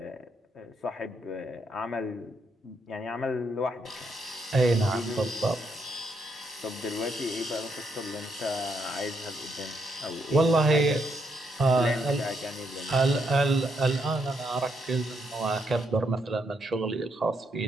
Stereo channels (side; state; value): both; normal; correlation 0.77